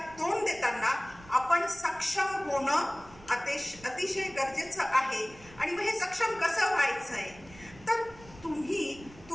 तोंड देताना आपण सक्षम होणं अतिशय गरजेचं आहे. आणि मग हे सक्षम कसं व्हायचंय, तर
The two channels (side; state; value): right; noise; rumble, 21 dB below the sound